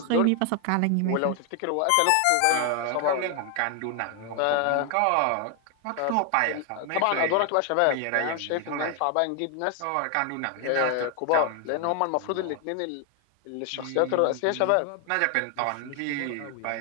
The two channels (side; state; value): both; different; correlation 0.00